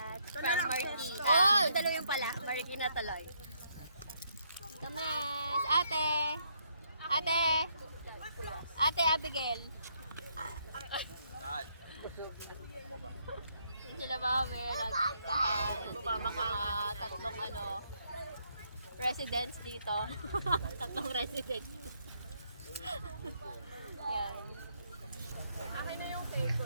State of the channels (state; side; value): inverted; both; correlation -0.73